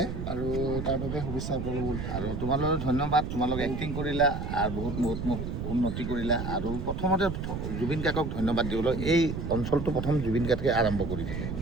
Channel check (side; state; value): right; noise; rumble, 4 dB below the sound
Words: আৰু তাৰ বাবে শুভেচ্ছা আপোনালোক। আৰু তোমালোকক ধন্যবাদ, তোমালোকে এক্টিং কৰিলা আৰু বহুত মোক উন্নতি কৰিলা। আৰু প্ৰথমতে জুবিন কাকক ধন্যবাদ দিবলৈ, এই অঞ্চলটো প্ৰথম জুবিন কাকে আৰম্ভ কৰি দিলে,